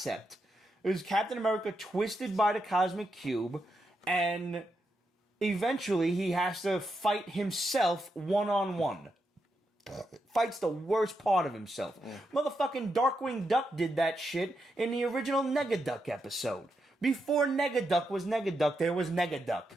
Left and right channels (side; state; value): both; normal; correlation 0.84